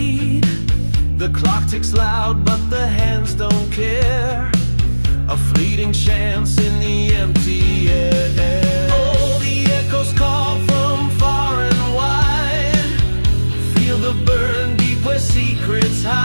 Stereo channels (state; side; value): inverted; both; correlation -1.00